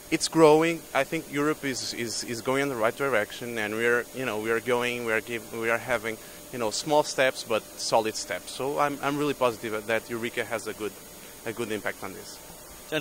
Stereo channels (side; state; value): both; identical; correlation 1.00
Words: it's growing. I think Europe is going in the right direction, and we are having, you know, small steps but solid steps. So I'm really positive that Eureka has a good impact on this.